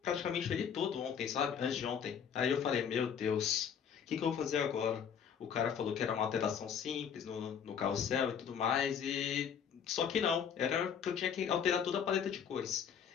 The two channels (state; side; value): quieter; right; 7.7 dB